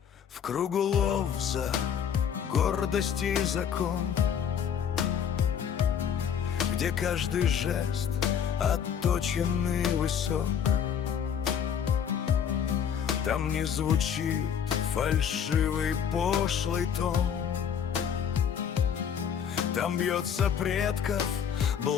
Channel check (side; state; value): right; quieter; 8.1 dB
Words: В кругу Ловза гордости и закон, где каждый жест отточенный высок. Там не звучит фальшивый пошлый тон, там бьется предков